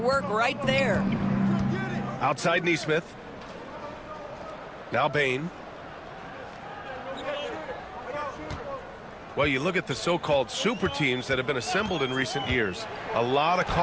right there. Outside Neesmith. Now Bain. Well, you look at the so-called super teams that have been assembled in recent years. A lot of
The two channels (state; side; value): identical; both; correlation 1.00